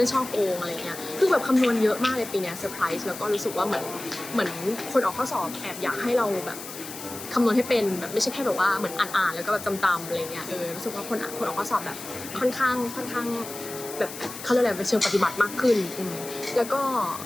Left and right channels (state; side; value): noise; left; hiss, 11 dB below the sound